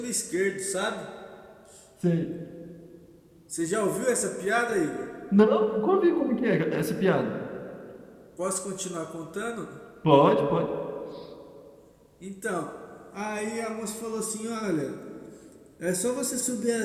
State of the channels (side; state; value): both; identical; correlation 1.00